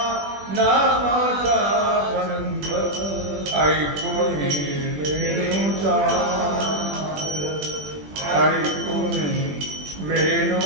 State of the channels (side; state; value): left; late; 20 ms